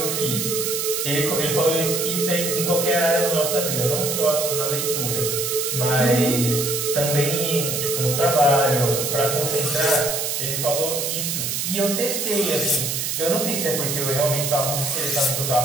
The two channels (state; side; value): noise; right; hiss, 1 dB below the sound